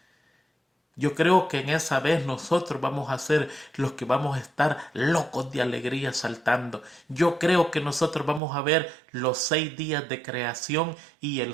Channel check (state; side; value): drops out; left; at 8.4 s